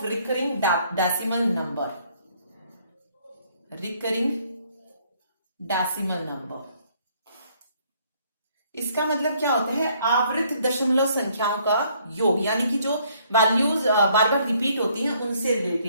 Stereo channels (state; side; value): inverted; both; correlation -0.65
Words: recurring decimal number. Recurring decimal number, इसका मतलब क्या होता है? आवृत दशमलव संख्याओं का योग, यानी कि जो वैल्यूज बार बार रिपीट होती हैं उनसे